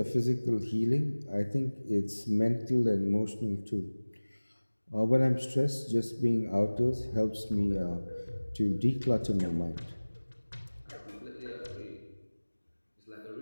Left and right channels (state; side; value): inverted; both; correlation -1.00